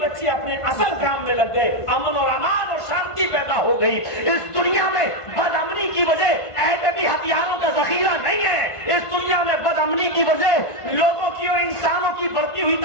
بچے اپنے اصل کام میں لگ گئے. امن اور امان اور شانتی پیدا ہو گئی. اس دنیا میں بدامنی کی وجہ ایٹمی ہتھیاروں کا ذخیرہ نہیں ہے. اس دنیا میں بدامنی کی وجہ لوگوں کی اور انسانوں کی بڑھتی ہوئی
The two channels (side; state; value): right; late; 1.5 ms